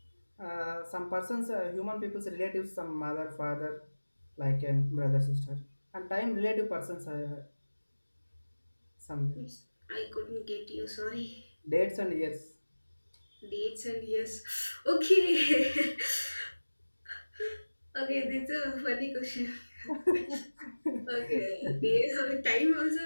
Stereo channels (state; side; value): inverted; both; correlation -1.00